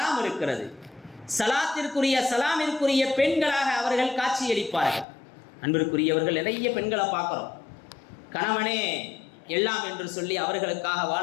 இருக்கிறது. சலாமிற்குரிய பெண்களாக அவர்கள் காட்சியளிப்பார்கள். அன்பிற்குரியவர்கள், நிறைய பெண்களை பார்க்குறோம், கணவனே எல்லாம் என்று சொல்லி அவர்களுக்காக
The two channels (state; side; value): drops out; right; at 5.1 s